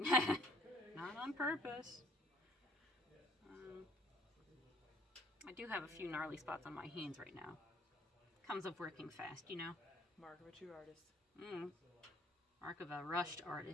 on purpose. I do have a few gnarly spots on my hands right now. Comes of working fast, you know. Mark of a true artist. Mark of a rushed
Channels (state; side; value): normal; both; correlation 0.59